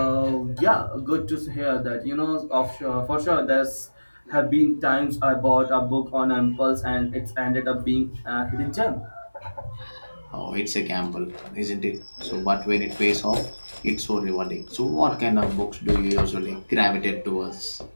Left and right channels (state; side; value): inverted; both; correlation -1.00